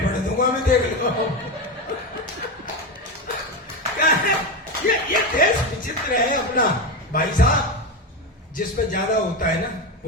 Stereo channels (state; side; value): normal; both; correlation 0.17